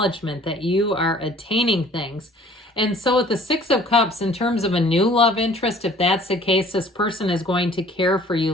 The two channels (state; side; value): normal; both; correlation 0.53